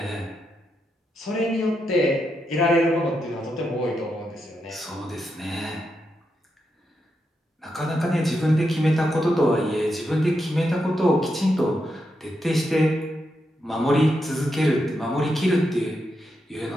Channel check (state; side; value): normal; both; correlation 0.84